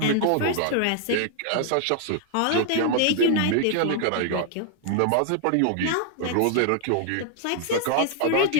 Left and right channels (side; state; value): both; different; correlation 0.00